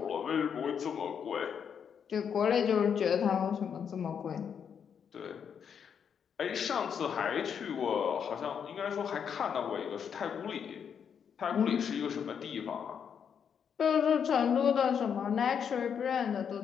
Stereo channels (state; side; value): quieter; right; 7.5 dB